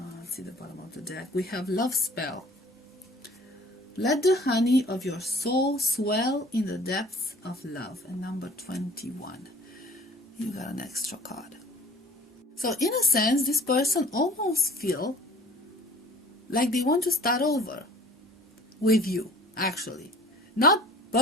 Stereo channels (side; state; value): both; normal; correlation 0.49